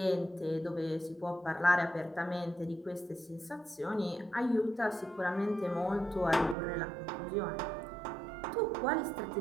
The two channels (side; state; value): left; drops out; at 6.6 s